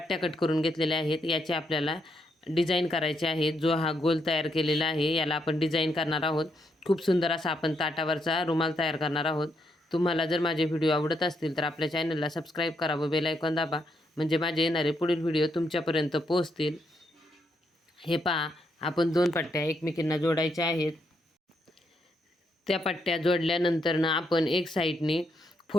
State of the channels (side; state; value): both; normal; correlation 0.78